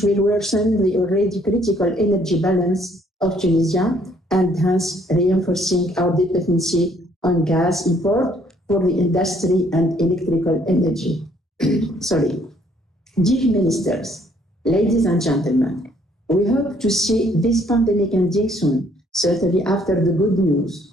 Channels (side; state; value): both; normal; correlation 0.64